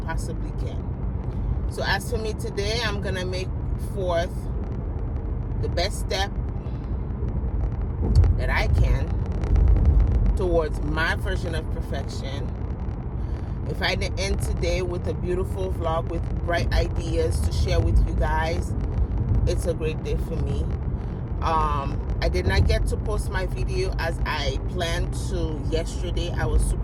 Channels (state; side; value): identical; both; correlation 1.00